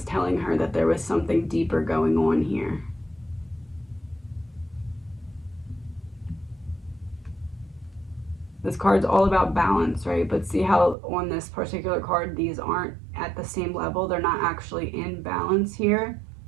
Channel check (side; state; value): left; drops out; at 11.0 s